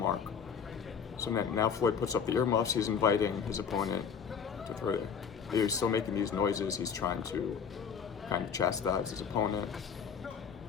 So now Floyd puts up the earmuffs. He's inviting his opponent to throw it. He's still making these noises. He's trying to kind of chastise his opponent.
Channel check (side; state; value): right; quieter; 6.7 dB